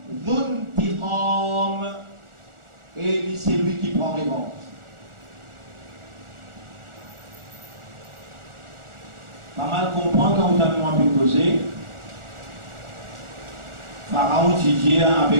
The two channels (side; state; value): left; late; 1.4 ms